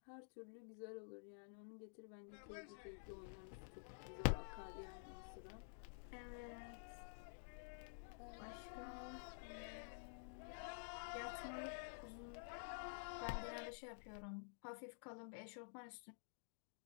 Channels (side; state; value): right; silent; digital silence